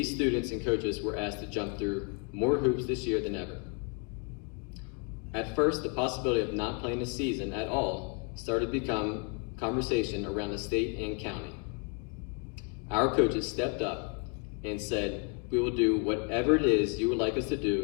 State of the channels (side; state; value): right; quieter; 36.1 dB